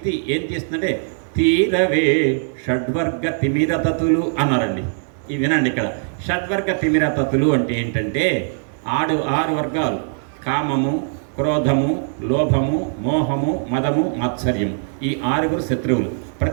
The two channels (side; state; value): left; silent; digital silence